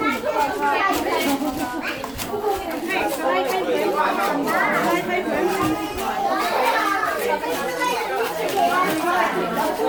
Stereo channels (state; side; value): noise; right; rumble, 24 dB below the sound